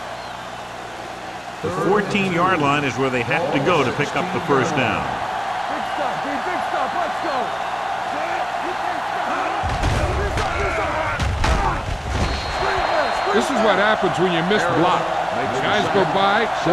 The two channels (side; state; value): both; identical; correlation 1.00